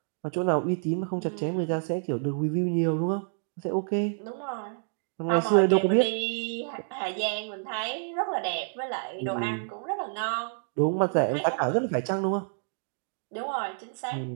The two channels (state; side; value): silent; left; digital silence